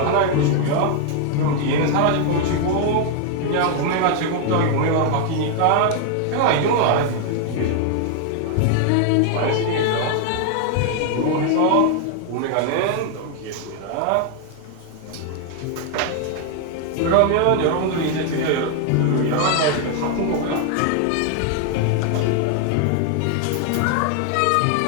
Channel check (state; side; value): different; both; correlation 0.00